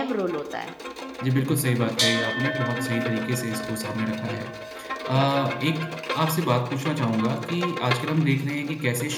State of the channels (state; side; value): identical; both; correlation 1.00